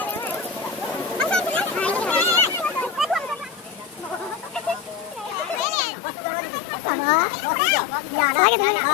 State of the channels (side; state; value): right; quieter; 6.6 dB